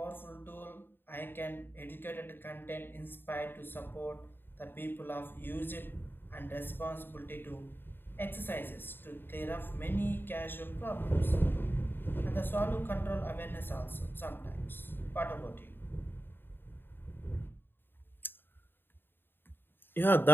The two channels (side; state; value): right; late; 0.098 ms